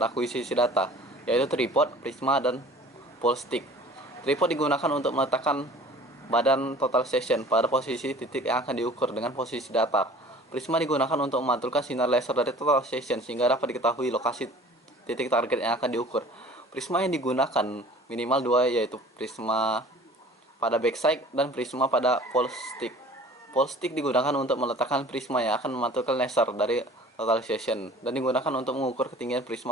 akuisisi data, yaitu tripod, prisma, dan pole stick. Tripod digunakan untuk meletakkan badan total session pada posisi titik yang akan diukur dengan posisi datar. Prisma digunakan untuk memantulkan sinar laser dari total session sehingga dapat diketahui lokasi titik target yang akan diukur. Prisma yang digunakan minimal dua, yaitu prisma pada backside dan prisma pada pole stick. Pole stick digunakan untuk meletakkan prisma yang akan memantulkan laser dari total session dan digunakan untuk mengukur ketinggian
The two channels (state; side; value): normal; both; correlation 0.47